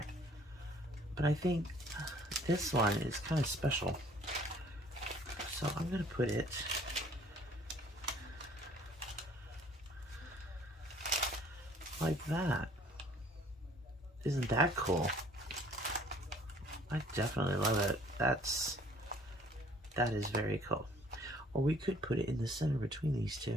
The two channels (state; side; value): normal; both; correlation 0.57